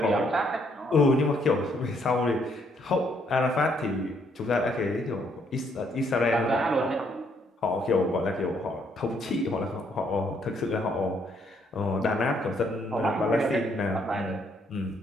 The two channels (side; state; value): both; normal; correlation 0.70